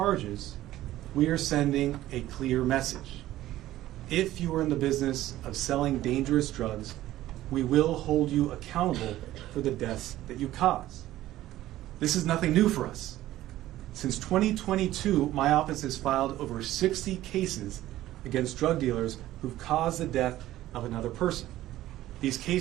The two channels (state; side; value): quieter; left; 14.7 dB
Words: we are sending a clear message. If you are in the business of selling dangerous drugs, we will hold you accountable for the deaths that you cause. This is nothing new for us. Since 2022, my office has filed over 60 cases against drug dealers who've caused the death of another person. These